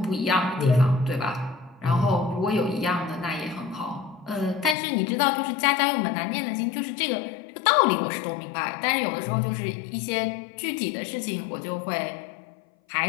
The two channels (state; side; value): drops out; right; at 4.8 s